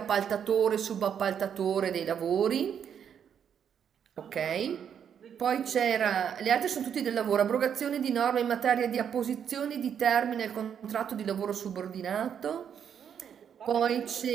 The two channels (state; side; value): quieter; left; 8.2 dB